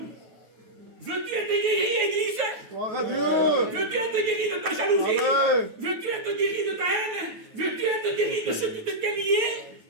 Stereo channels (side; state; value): left; late; 8.6 ms